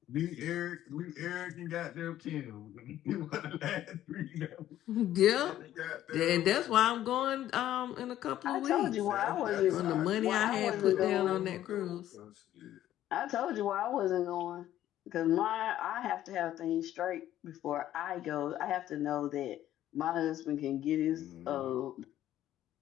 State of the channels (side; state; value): right; quieter; 12.7 dB